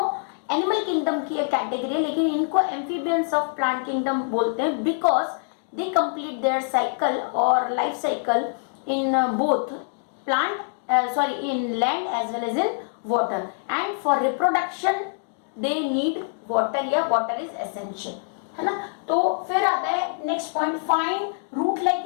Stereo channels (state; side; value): silent; right; digital silence